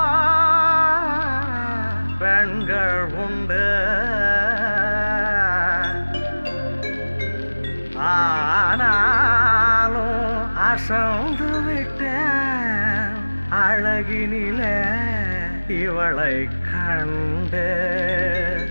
பெண்கள் உண்டு. ஆனாலும் அசந்து விட்டேன் அழகினிலே இவளை கண்டு.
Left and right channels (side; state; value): both; inverted; correlation -1.00